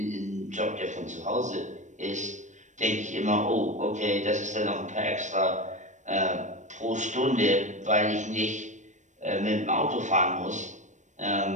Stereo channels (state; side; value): late; left; 0.35 ms